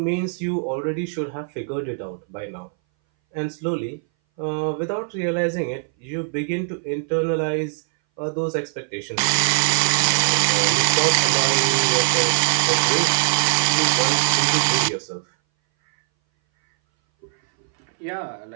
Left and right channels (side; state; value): left; silent; 61 dB below the other